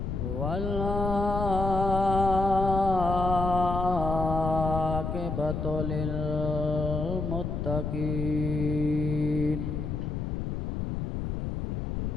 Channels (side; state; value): left; noise; rumble, 3 dB below the sound